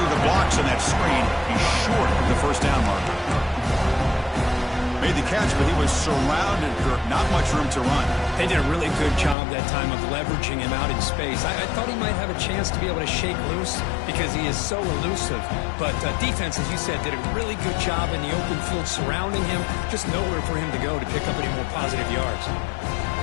the blocks on that screen. He's short of the first down marker. Made the catch, but he was surrounded. Not much room to run. They did a really good job that time of leveraging him out in space. I thought he might have a chance to be able to shake loose because he is so elusive. But defense, as you said, did a really good job in the open field surrounding him. Just nowhere for him to go to pick up any more positive yards.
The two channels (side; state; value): right; drops out; at 9.3 s